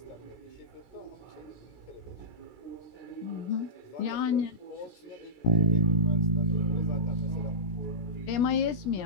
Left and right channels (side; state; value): right; late; 16 ms